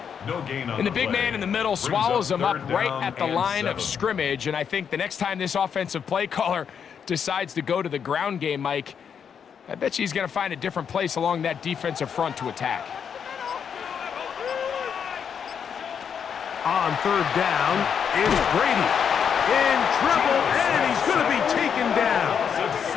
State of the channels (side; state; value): right; quieter; 7.4 dB